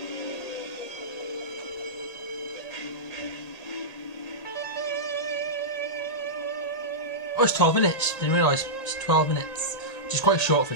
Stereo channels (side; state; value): right; late; 1.8 ms